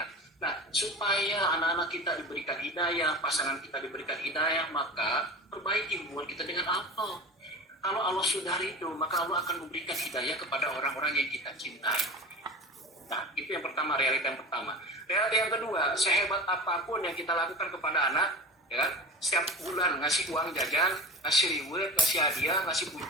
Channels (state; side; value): normal; both; correlation 0.32